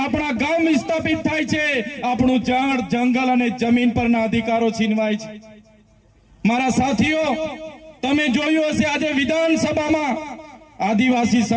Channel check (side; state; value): both; identical; correlation 1.00